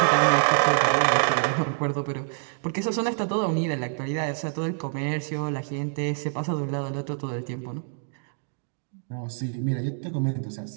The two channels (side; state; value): left; silent; digital silence